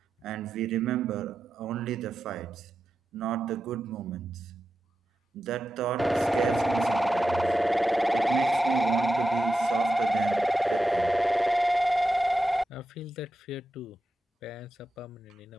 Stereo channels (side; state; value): both; normal; correlation 0.90